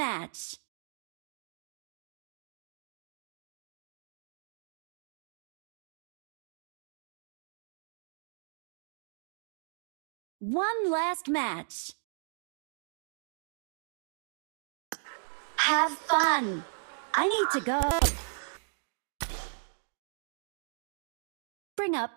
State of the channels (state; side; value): silent; left; digital silence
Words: One last match. Have fun. I need to go. Bring